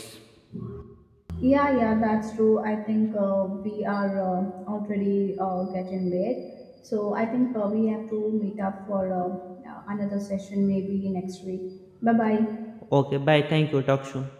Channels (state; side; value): identical; both; correlation 1.00